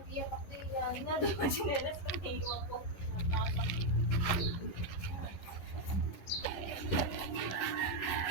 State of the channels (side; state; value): right; late; 10 ms